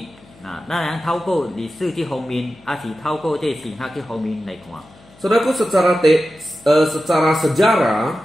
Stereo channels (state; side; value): noise; left; hum, 26 dB below the sound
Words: 咱能透过历史这方面，还是透过这神学这方面来看。Saudaraku, secara